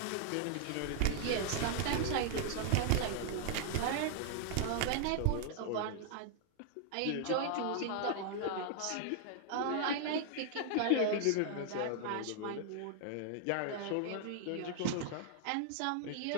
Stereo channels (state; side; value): different; both; correlation 0.00